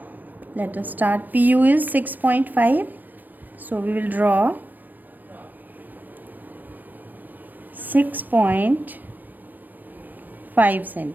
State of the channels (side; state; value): left; late; 0.088 ms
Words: Let us start. PU is 6.5. So we will draw 6.5